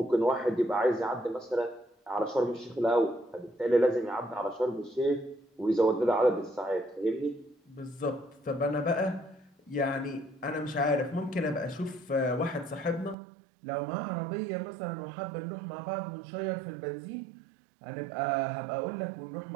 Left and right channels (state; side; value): drops out; left; at 13.2 s